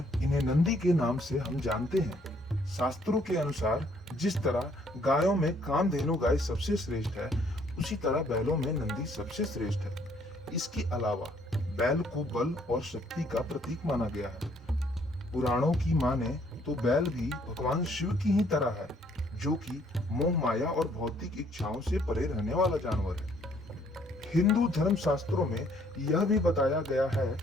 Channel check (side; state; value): both; normal; correlation 0.65